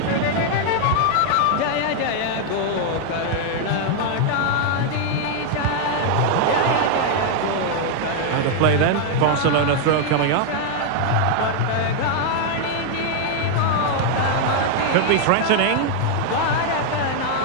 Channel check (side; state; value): both; different; correlation 0.00